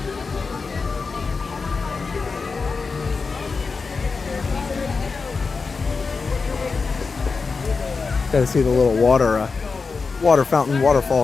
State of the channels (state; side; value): quieter; right; 4.6 dB